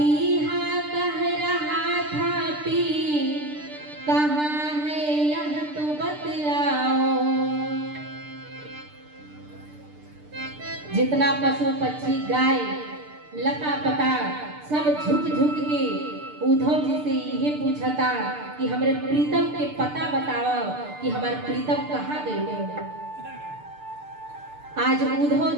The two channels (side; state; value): left; late; 6.7 ms